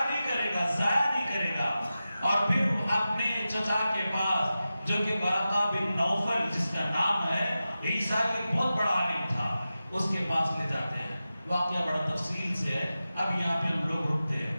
نہیں کرے گا, ضائع نہیں کرے گا. اور پھر اپنے چچا کے پاس جو کہ ورقہ بن نوفل جس کا نام ہے, عیسیٰ ایک بہت بڑا عالم تھا, اس کے پاس لے جاتے ہیں. واقعہ بڑا تفصیل سے ہے, اب یہاں پہ ہم لوگ رکتے ہیں.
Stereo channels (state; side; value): inverted; both; correlation -0.93